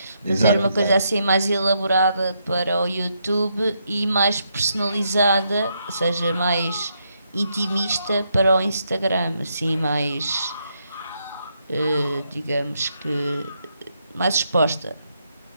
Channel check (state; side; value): inverted; both; correlation -0.78